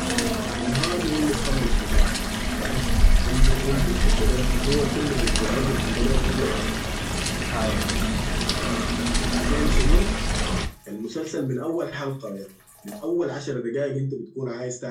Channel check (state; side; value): identical; both; correlation 1.00